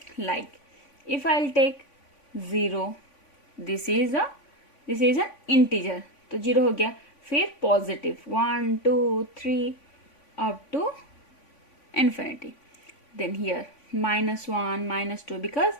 like if I will take 0, this is an integer, तो 0 हो गया, फिर positive 1 2 3 up to infinity, then here -1 -2, because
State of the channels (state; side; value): late; right; 3.5 ms